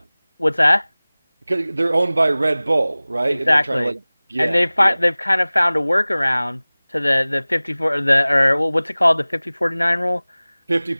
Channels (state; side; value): inverted; both; correlation -0.99